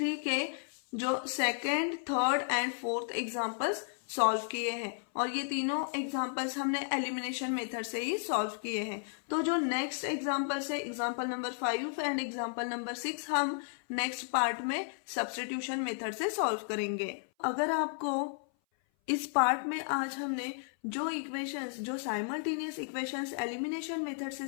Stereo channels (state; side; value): silent; right; 55 dB below the other